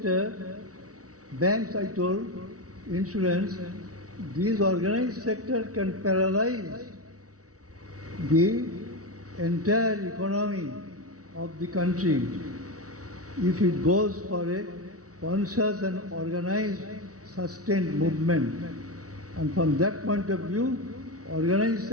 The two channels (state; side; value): late; left; 0.66 ms